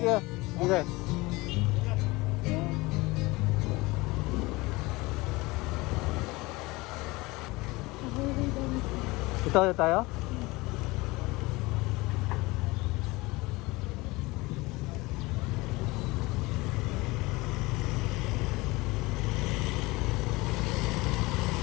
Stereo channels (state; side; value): quieter; right; 22.3 dB